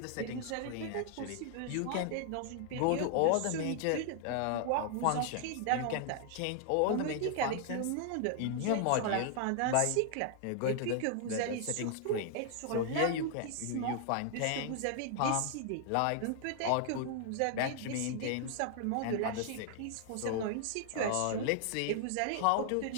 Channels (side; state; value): both; different; correlation 0.00